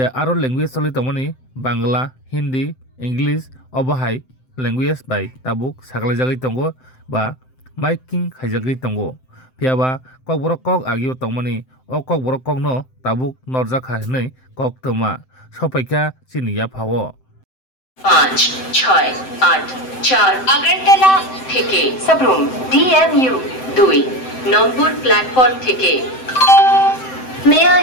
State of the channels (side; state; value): right; late; 7.8 ms